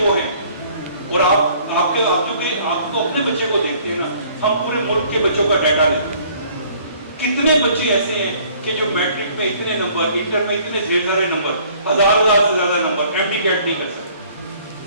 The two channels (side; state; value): both; inverted; correlation -0.57